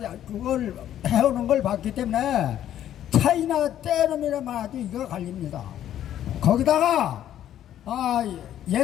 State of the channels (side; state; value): right; quieter; 11.3 dB